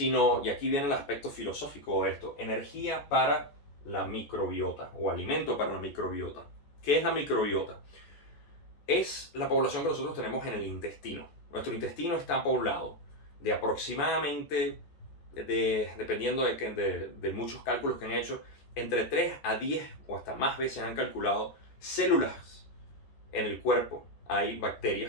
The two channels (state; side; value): late; right; 14 ms